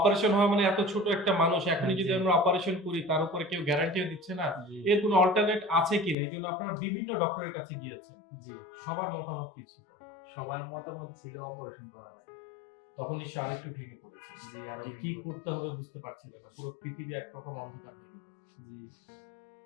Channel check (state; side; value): drops out; right; at 6.2 s